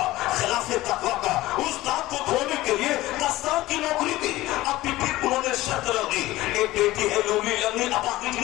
خلاف تقویٰ کا. اس داغ کو دھونے کے لیے 10 سال کی نوکری دی. اب بھی انہوں نے شرط رکھی, ایک بیٹی ہے لولی لنگڑی, اپاہج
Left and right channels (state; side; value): quieter; right; 17.4 dB